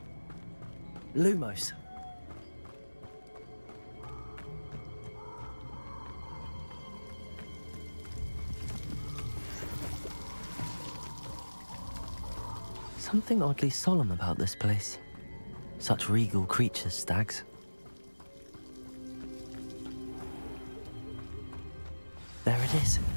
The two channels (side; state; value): both; inverted; correlation -1.00